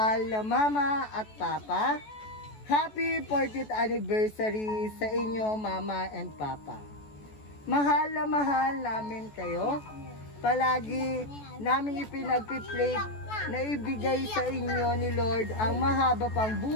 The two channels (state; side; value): late; right; 14 ms